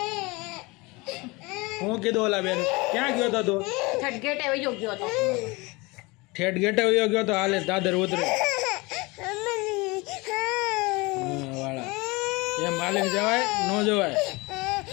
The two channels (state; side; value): quieter; right; 24.7 dB